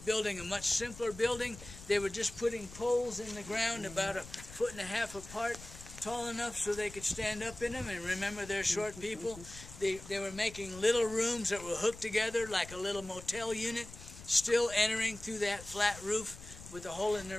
building a much simpler building. They were just putting poles in the ground about 1.5 feet apart, tall enough so they could stand up in them. And remember, they're short people. They were making little rooms that were hooked together like a little motel unit, still entering through that flat roof with a hole in the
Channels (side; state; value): left; noise; rumble, 16 dB below the sound